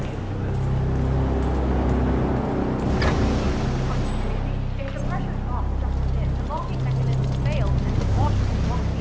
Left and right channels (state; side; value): identical; both; correlation 1.00